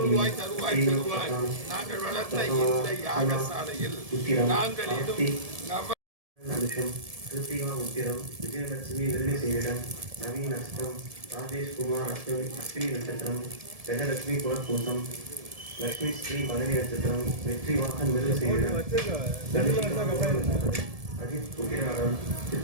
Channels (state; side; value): late; left; 1.7 ms